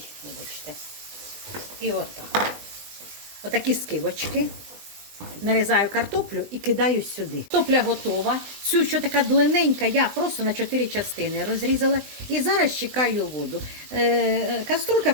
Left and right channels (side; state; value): left; late; 20 ms